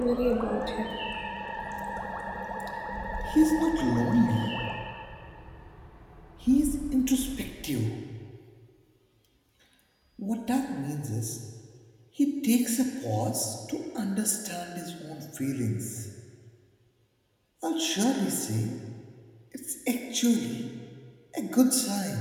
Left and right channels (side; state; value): both; identical; correlation 1.00